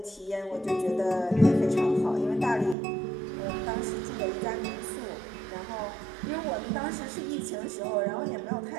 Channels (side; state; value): left; drops out; at 2.8 s